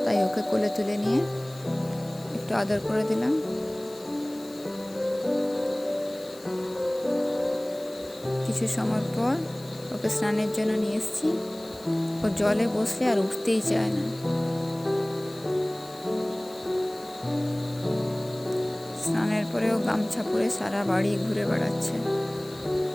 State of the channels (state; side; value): noise; left; hiss, 21 dB below the sound